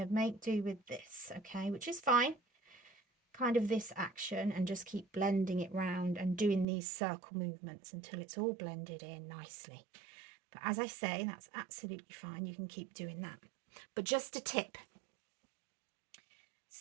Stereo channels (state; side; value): drops out; left; at 6.7 s